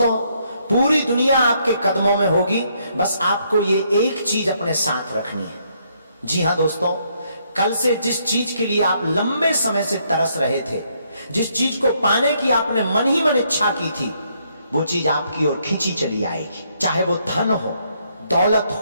पूरी दुनिया आपके कदमों में होगी, बस आपको ये एक चीज अपने साथ रखनी है। जी हां दोस्तों, कल से जिस चीज के लिए आप लंबे समय से तरस रहे थे, जिस चीज को पाने की आपने मन ही मन इच्छा की थी, वो चीज आपकी ओर खींची चली आएगी। चाहे वो धन हो, दौलत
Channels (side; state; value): both; inverted; correlation -0.72